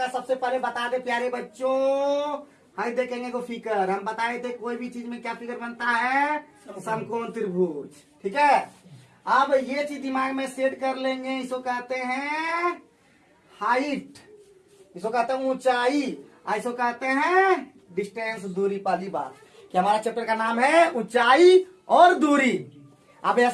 सबसे पहले बता दे प्यारे बच्चों, हाई देखेंगे को फिगर। हम बताए थे कोई भी चीज में क्या फिगर बनता है, समकोण त्रिभुज। ठीक है, अब ये चीज दिमाग में सेट कर लेंगे। इसको कहते हैं हाइट, इसको कहते हैं ऊंचाई, इसको कहते हैं डिस्टेंस, दूरी। पहली बात कि हमारा चैप्टर का नाम है ऊंचाई और दूरी। अब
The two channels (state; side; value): identical; both; correlation 1.00